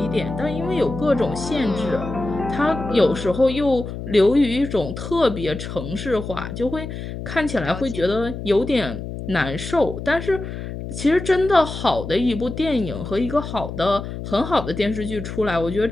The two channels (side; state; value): left; noise; hum, 8 dB below the sound